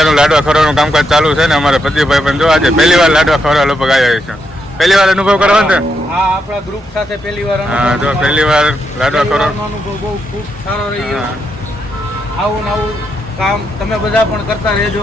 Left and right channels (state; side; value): normal; both; correlation 0.81